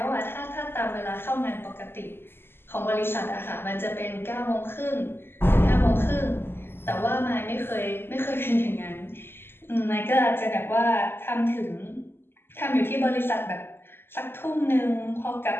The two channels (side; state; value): right; late; 0.11 ms